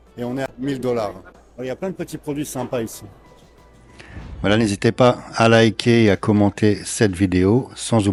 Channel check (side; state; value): both; identical; correlation 1.00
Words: et on est à $1000. Il y a plein de petits produits sympas ici. Voilà, n'hésitez pas à liker et à commenter cette vidéo, sans